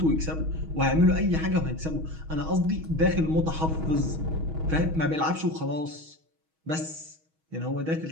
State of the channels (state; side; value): late; left; 6.3 ms